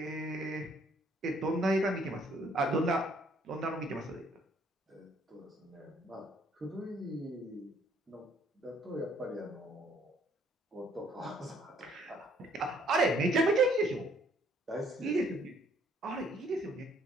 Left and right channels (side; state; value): both; normal; correlation 0.64